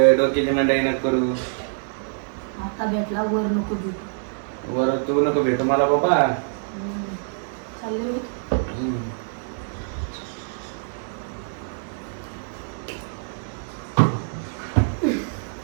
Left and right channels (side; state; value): left; silent; 62 dB below the other